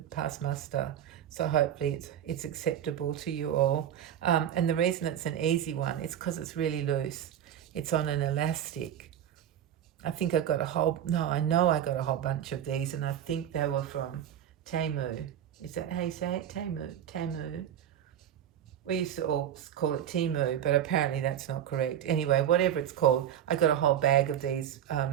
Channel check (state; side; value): quieter; left; 10.3 dB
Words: pass muster, so hopefully it's acceptable to you all. And the reason it's an easy one is because it's really loose. It's on an elastic. I think I got I know I got a whole bunch of these, and I think they were from Temu. Is that how you say it? Temu. We used to all call it Temu, but apparently that's not correct. Anyway, whatever it's called, I got a whole bag of these